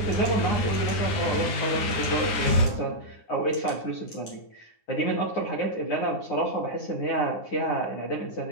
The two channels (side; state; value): right; late; 10 ms